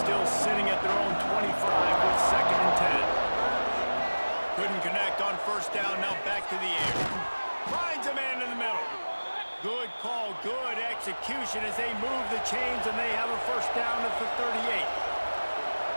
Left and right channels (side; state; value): both; inverted; correlation -1.00